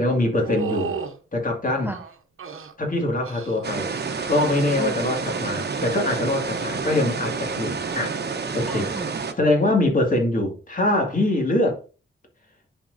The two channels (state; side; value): normal; both; correlation 0.43